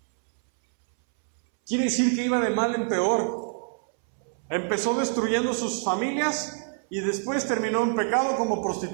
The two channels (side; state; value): left; silent; 61 dB below the other